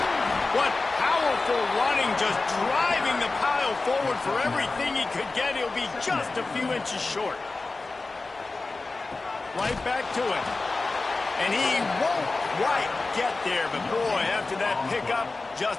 What powerful running, just driving the pile forward for everything he could get. He'll be just a few inches short. Right back to it. And he won't quite get there, but boy, after that pickup,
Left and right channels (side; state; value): right; quieter; 3.5 dB